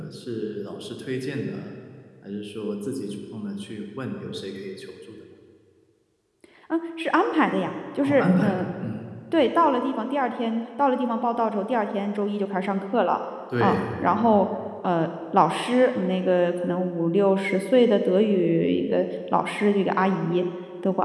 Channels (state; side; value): identical; both; correlation 1.00